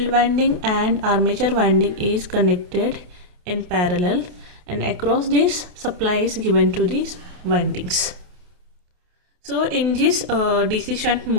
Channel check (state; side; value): late; left; 28 ms